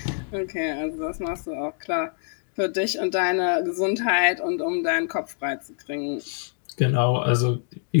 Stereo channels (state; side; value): silent; right; digital silence